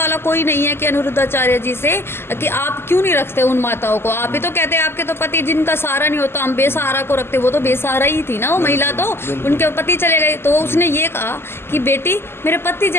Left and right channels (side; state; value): right; late; 0.12 ms